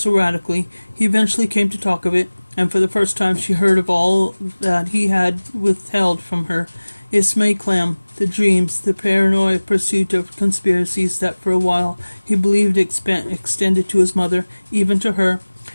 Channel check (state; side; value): inverted; both; correlation -1.00